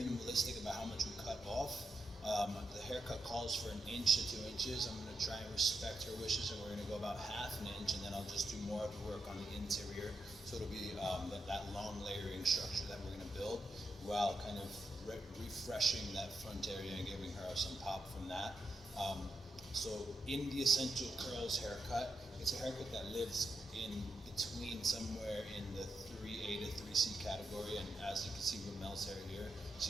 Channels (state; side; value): normal; both; correlation 0.85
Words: about how much we cut off. The haircut calls for 1 to 2 inches. I'm going to try and respect her wishes, and we're going to go about half an inch, and then I'll just do more of the work on the interior. So it'll be that long layering structure that we're going to build while kind of refreshing that front area and giving her some pop from that. So in the Essential Curls haircut, it's a haircut that lives in between somewhere in the 3A to 3C category, and as you can see with Mel's hair here,